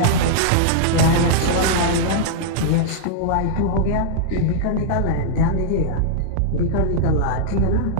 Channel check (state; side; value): different; both; correlation -0.02